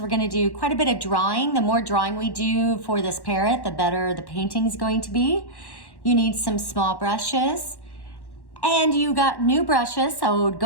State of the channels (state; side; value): late; right; 1.1 ms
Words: we're going to do quite a bit of drawing. The more drawing we do for this parrot, the better the painting is going to be. You need some small brushes, and you got new brushes, so